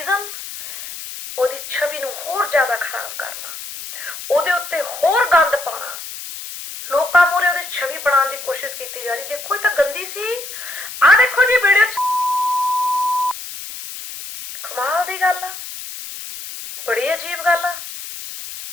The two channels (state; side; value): noise; left; hiss, 10 dB below the sound